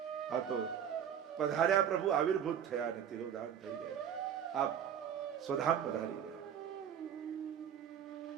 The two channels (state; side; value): quieter; left; 8.8 dB